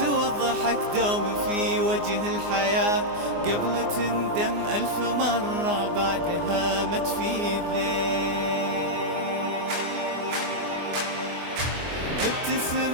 والضحك دوم في وجه الحياة قبل تندم 1000 مرة بعدها ما تفيد ليه.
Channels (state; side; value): late; left; 24 ms